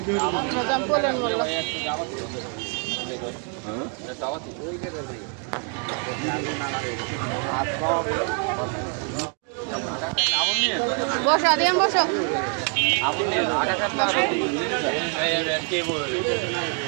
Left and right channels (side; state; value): left; quieter; 39.5 dB